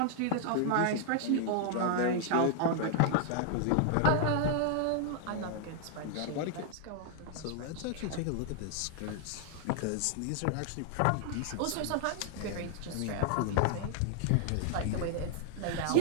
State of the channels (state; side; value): different; both; correlation 0.00